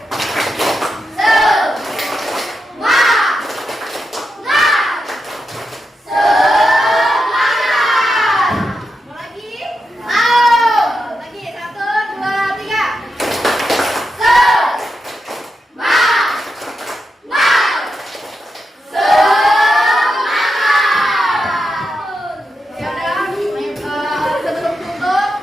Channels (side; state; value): both; normal; correlation 0.87